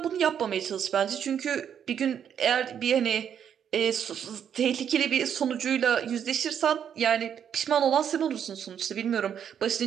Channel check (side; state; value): left; quieter; 8.6 dB